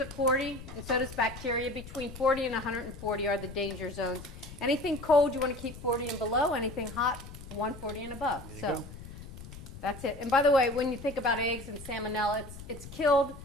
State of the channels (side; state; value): left; noise; rumble, 14 dB below the sound